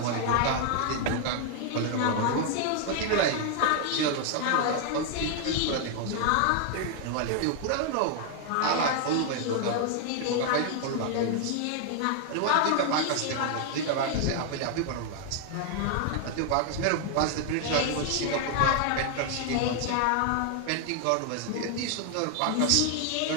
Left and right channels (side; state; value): both; different; correlation 0.00